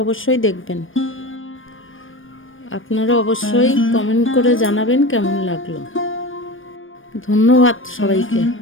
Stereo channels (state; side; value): late; right; 0.58 ms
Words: অবশ্যই দেখবেন। আপনারা অবশ্যই কমেন্ট করে জানাবেন কেমন লাগলো। ধন্যবাদ সবাইকে।